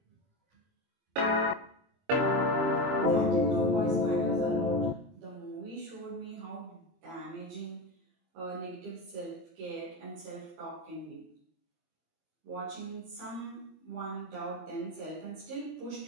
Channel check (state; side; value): late; left; 23 ms